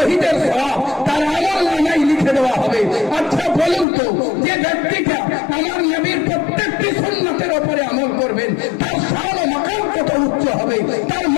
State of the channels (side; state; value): right; drops out; at 3.9 s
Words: সওয়াব তার আমল নামায় লিখে দেওয়া হবে। আচ্ছা বলুন তো, যে ব্যক্তিটা আমার নবীর প্রত্যেকটি সুন্নাতের উপরে আমল করবেন তার শান ও মাকাম কত উচ্চ হবে, তার